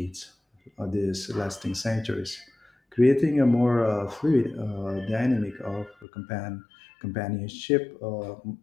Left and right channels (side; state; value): right; drops out; at 6.1 s